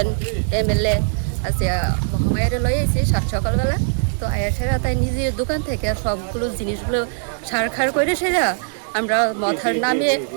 এমএলএ আছে মহামায়ারে লই আইছি সাত সকালবেলা। তো আয়াছেরা তাই নিজের দোকান থেকে সবগুলো জিনিসগুলো সারখার করে সেরা আমরা মাথার নামিয়ে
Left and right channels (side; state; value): left; silent; digital silence